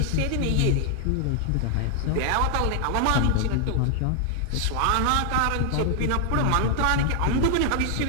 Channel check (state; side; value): different; both; correlation 0.00